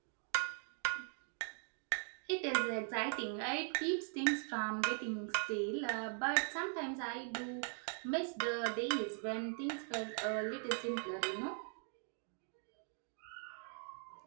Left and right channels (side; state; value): left; silent; 50 dB below the other